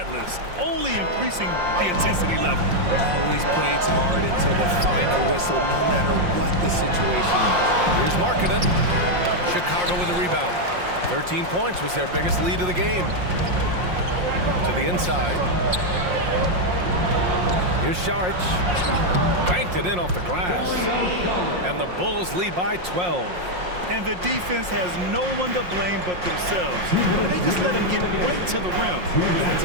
only increasing the intensity level. Always plays hard until the final whistle, no matter what the situation is. Here's Markkanen. Chicago with a rebound. 13 points was their biggest lead of the game. To the inside. Here's Saric. Banked it in off the glass. And the Bulls lead by 12. And the defense has no one to blame but themselves. They just let them get right to the rim. That's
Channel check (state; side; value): late; left; 5.6 ms